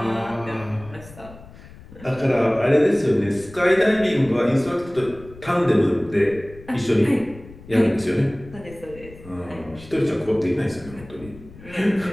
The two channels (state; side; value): noise; left; rumble, 19 dB below the sound